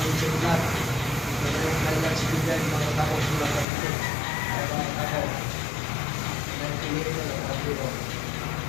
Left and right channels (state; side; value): drops out; right; at 3.7 s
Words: sulat. Kailan sibigyan mga tako sulat na ito. Kaya mga tako. Nagpiliin na ng kapilo.